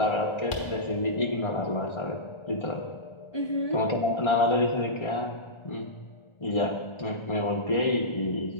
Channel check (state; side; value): late; right; 1.4 ms